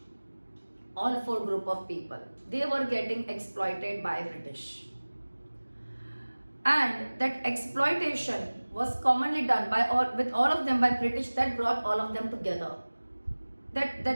All 4 group of people, they were getting exploited by British. And that exploitation was commonly done with all of them by British. That brought all of them together.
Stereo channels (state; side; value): inverted; both; correlation -1.00